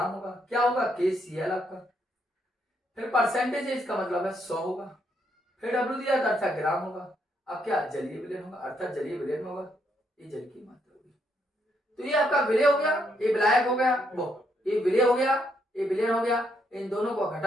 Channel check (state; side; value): normal; both; correlation 0.75